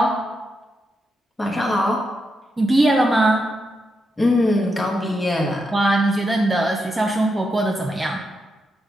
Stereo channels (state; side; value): normal; both; correlation 0.84